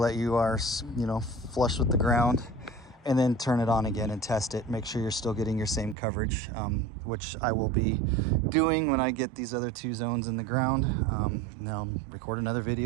that you are, flush with the ground, and then turn it on again and test it. Make sure you're still getting your same coverage, which I will be doing when I get these other 2 zones in the ground. Now I'm recording another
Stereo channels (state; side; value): drops out; left; at 6.0 s